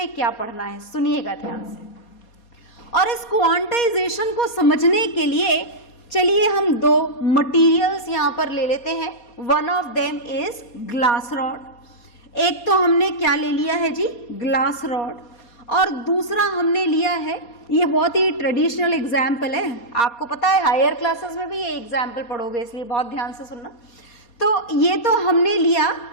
क्या पढ़ना है। सुनिएगा ध्यान से। और इस क्वांटाइजेशन को समझने के लिए चलिए हम 2 मटेरियल्स यहां पर ले लेते हैं। One of them is glass rod. एक तो हमने क्या ले लिया है जी? Glass rod. और दूसरा हमने लिया है, ये बहुत ही ट्रेडिशनल एग्जाम्पल है, आपको पता है हायर क्लासेस में भी ये एग्जाम्पल पढ़ोगे, इसलिए बहुत ध्यान से सुनना। तो ये तो हमने लिया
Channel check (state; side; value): late; right; 4.2 ms